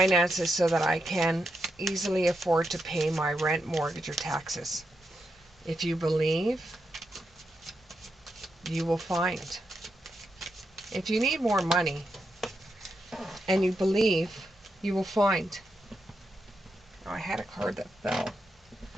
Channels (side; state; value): both; normal; correlation 0.84